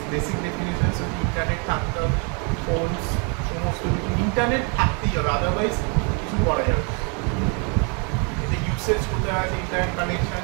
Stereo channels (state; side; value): quieter; left; 35.9 dB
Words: ডেফিনেশনস ইন্টারনেট থাকতে হবে ফোনস সমস্ত কিছু ইন্টারনেট থাকতেই হবে আদারওয়াইজ কিছু করা যাবে এতে ইউসেজ কোথায় আছে ইন্টারনেট কানেকশন